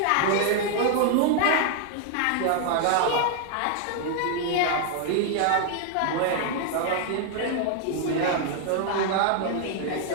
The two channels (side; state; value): both; different; correlation 0.00